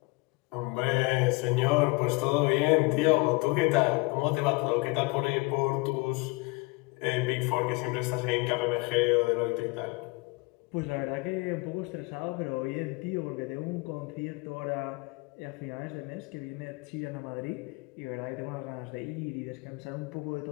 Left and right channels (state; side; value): quieter; right; 25.9 dB